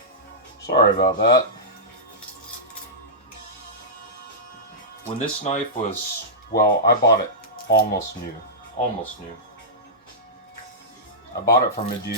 Sorry about that. When this knife was, well, I bought it almost new. I bought it from a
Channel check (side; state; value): both; normal; correlation -0.14